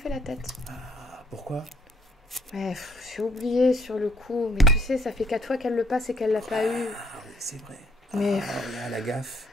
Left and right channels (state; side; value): normal; both; correlation 0.65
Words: la tête. Ah, pourquoi? Ouais, j'ai oublié sur le coup. Mais tu sais, ça fait 4 fois qu'elle le passe et qu'elle l'a pas eu. Ah oui, c'est vrai. Mais Ah, là, la gaffe.